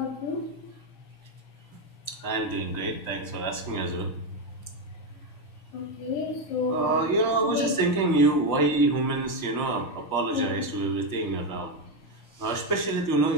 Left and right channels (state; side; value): late; right; 5.9 ms